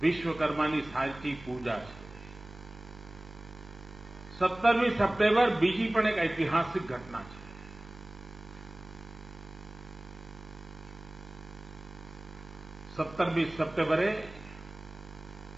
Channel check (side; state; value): right; noise; hum, 18 dB below the sound